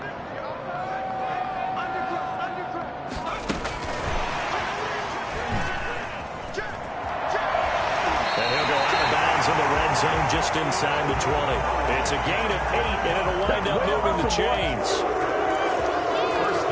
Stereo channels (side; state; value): both; identical; correlation 1.00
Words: Zone just inside the 20. It's a gain of 8, and it'll wind up moving the chains. First